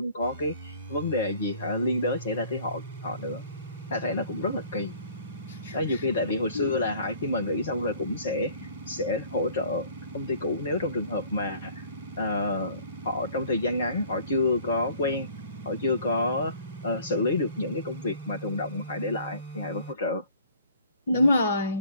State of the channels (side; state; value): both; inverted; correlation -0.52